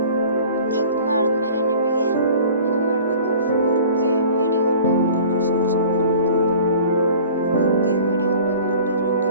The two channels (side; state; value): both; inverted; correlation -0.46